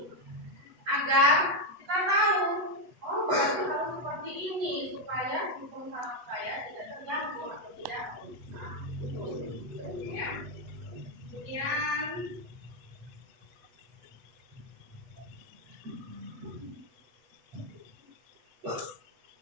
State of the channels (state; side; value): late; left; 8.2 ms